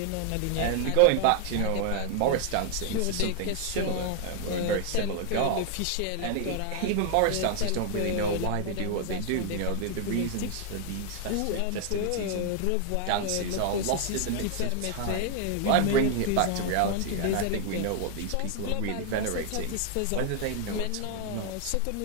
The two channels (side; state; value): both; different; correlation 0.00